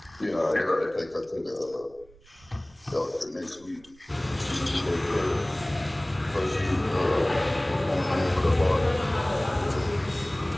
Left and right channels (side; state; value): right; noise; rumble, 27 dB below the sound